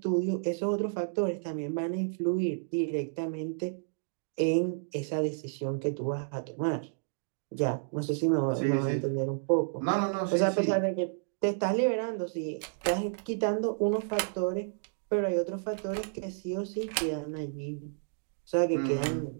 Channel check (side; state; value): left; silent; digital silence